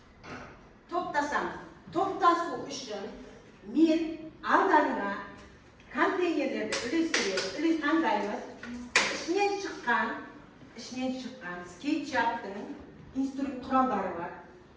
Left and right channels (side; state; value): both; identical; correlation 1.00